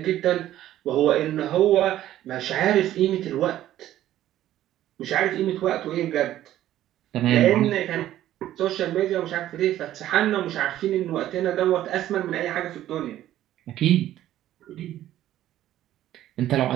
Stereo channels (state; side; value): quieter; left; 13.0 dB